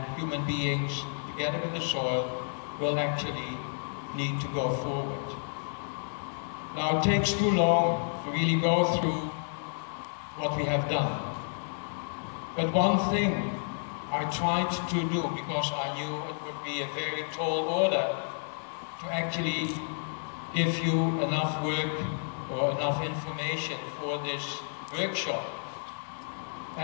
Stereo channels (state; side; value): silent; right; digital silence